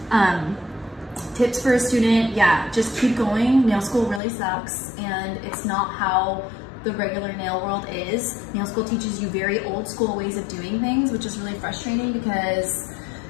Tips for a student, yeah, just keep going. Nail school really sucks, and it's not how the regular nail world is. Nail school teaches you very old school ways of doing things, which is really frustrating, because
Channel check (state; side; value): drops out; right; at 4.2 s